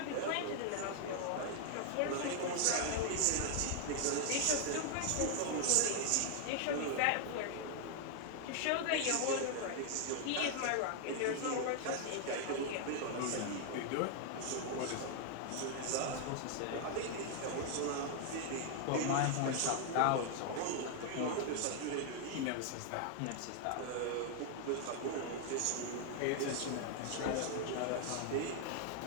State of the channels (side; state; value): both; different; correlation 0.00